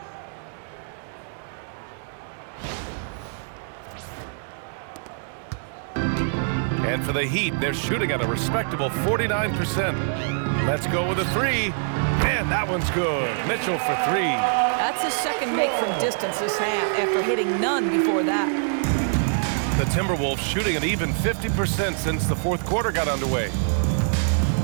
And for the Heat, they're shooting at a respectable 49%. Let's go with a three. And that one's good. Mitchell for three. That's his second make from distance this half after hitting none before that. The Timberwolves shooting an even 50% since the fourth quarter got underway.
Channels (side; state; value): left; silent; 62 dB below the other